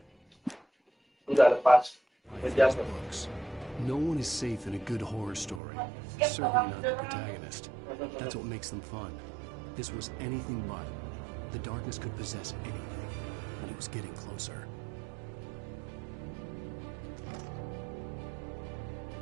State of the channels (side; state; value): left; drops out; at 5.6 s